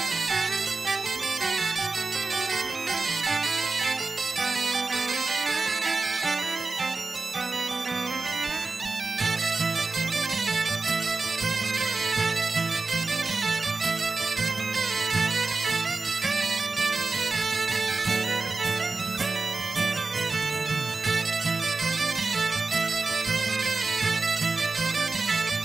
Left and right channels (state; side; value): quieter; left; 3.8 dB